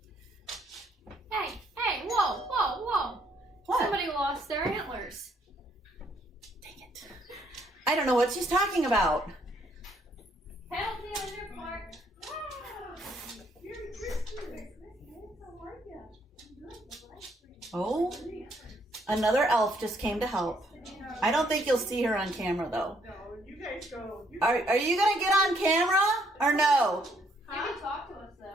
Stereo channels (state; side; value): normal; both; correlation 0.69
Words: Hey, whoa. What? Somebody lost their antlers. Dang it. I don't know what she's talking about. Penalty on your part. Merry Christmas. How are you? I'm good. Oh, another elf just came to help. I don't think you'll see her on camera though. No, you guys go. Are you gonna get on camera or no? You can talk to us